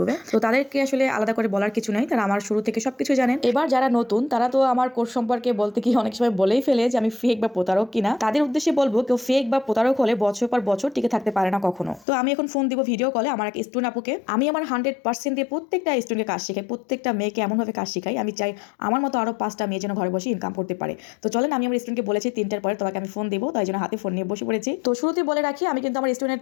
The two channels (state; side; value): drops out; right; at 12.1 s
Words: তো তাদেরকে আসলে আলাদা করে বলার কিছু নাই, তারা আমার শুরু থেকে সবকিছু জানেন। এবার যারা নতুন তারা তো আমার কোর্স সম্পর্কে বলতে কি অনেক সময় বলেই ফেলে যে আমি ফেক বা প্রতারক কিনা। তাদের উদ্দেশ্যে বলবো, কেউ ফেক বা প্রতারক হলে বছর পর বছর টিকে থাকতে পারে না কখনো। তো আমি এখন ফোন দিব ভিডিও কলে আমার এক স্টুডেন্ট আপুকে। আমি আমার 100% দিয়ে প্রত্যেকটা স্টুডেন্টকে কাজ শেখাই, প্রত্যেকটা মেয়েকে এমনভাবে কাজ শেখাই, আমি চাই আমার মতো আরো 5টা মেয়ে যেন ঘরে বসে ইনকাম করতে পারে। তো চলেন, আমি আমার স্টুডেন্টকে বলেছি 3টার পরে তোমাকে আমি ফোন দিব, তাই জন্য হাতে ফোন নিয়ে বসে পড়েছি। তো শুরুতে বলে রাখি, আমি কিন্তু আমার স্টুডেন্ট